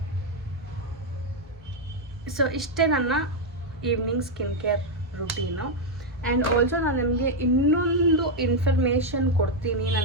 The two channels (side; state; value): both; normal; correlation 0.01